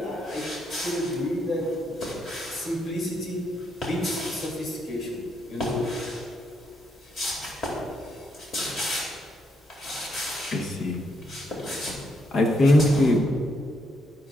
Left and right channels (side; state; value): both; normal; correlation 0.77